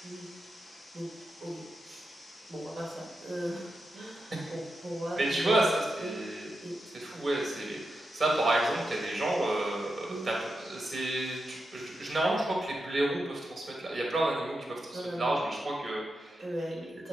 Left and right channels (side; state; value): both; normal; correlation 0.88